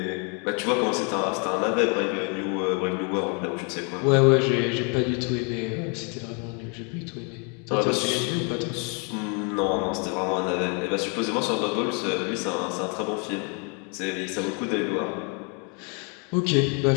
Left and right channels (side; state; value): right; quieter; 36.3 dB